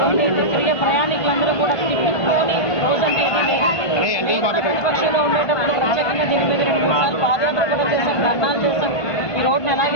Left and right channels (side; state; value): right; late; 1.5 ms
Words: తిరిగే ప్రయాణికులందరూ కూడా తిప్పుకొని రోజంటే ప్రతిపక్షంలో ఉండేటప్పుడు ప్రత్యేకంగా దీని మీద 2-3 సార్లు పాదయాత్ర కూడా చేశాం, ధర్నాలు చేశాం. ఈ రోడ్డును